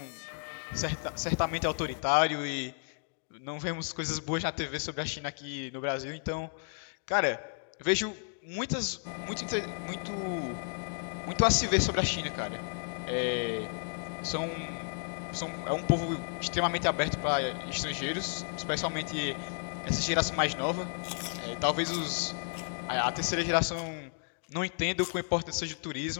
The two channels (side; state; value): right; silent; 56 dB below the other